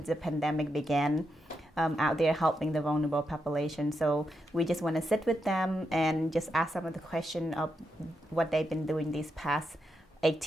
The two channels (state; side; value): normal; both; correlation 0.84